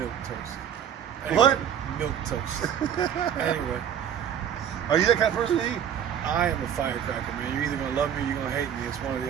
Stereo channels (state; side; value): quieter; left; 9.0 dB